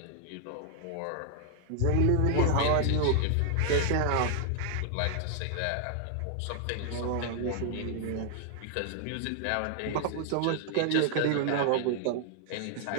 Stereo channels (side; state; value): both; different; correlation 0.00